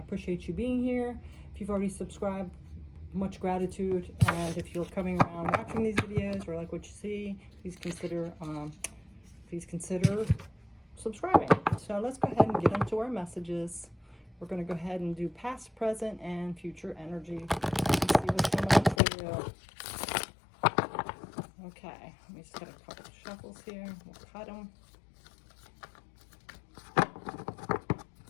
appreciate you being here. If you've already subscribed, much gratitude. And if you're coming around watching these videos or like what you see, please consider subscribing. So let's go ahead and get into our messages. We're going to go ahead and do past, present, and future energy. Let's see what's coming up for you. Okay, let me just get a couple of shuffles here. We'll cut them.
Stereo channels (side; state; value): right; drops out; at 19.0 s